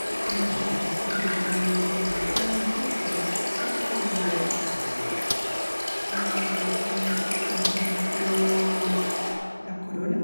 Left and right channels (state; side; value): inverted; both; correlation -1.00